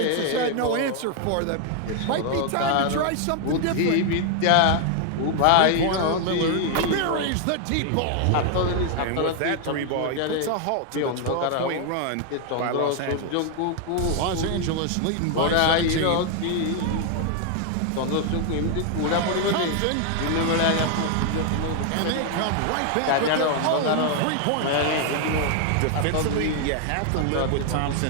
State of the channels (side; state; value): both; different; correlation 0.00